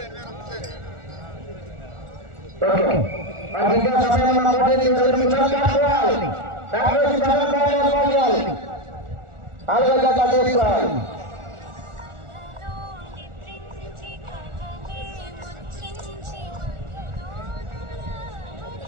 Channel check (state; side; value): late; left; 1.4 ms